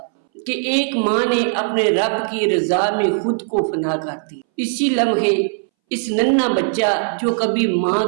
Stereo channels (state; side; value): silent; left; 64 dB below the other